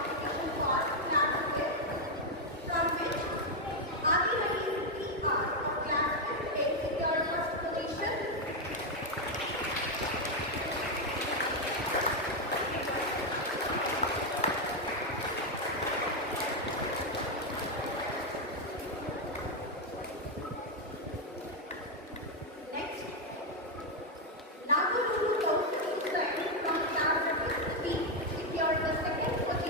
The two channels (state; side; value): normal; both; correlation 0.03